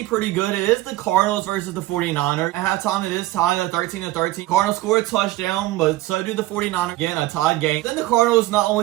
pretty good. It is the Cardinals versus the 49ers. At halftime, it is tied at 13-13. Cardinals score a touchdown, but so do the 49ers. Again, a tied game. Then the Cardinals not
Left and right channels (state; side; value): quieter; left; 17.1 dB